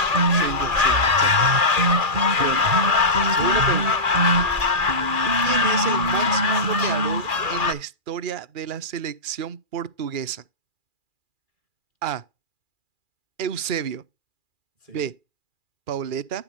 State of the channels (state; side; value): late; left; 2.4 ms